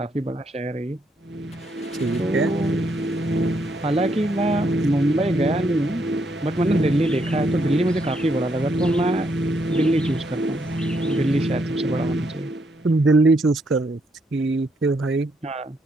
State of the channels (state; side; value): normal; both; correlation 0.75